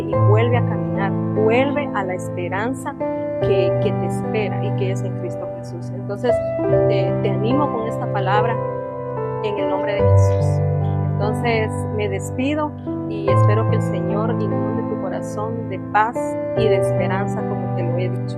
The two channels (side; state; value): both; identical; correlation 1.00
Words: vuelve a caminar, vuelve a la esperanza que te espera y que es en Cristo Jesús. Entonces te animo con esta palabra en el nombre de Jesús. Entonces me despido y espero que el Señor inunde tu corazón de paz y de esperanza como te lo he dicho.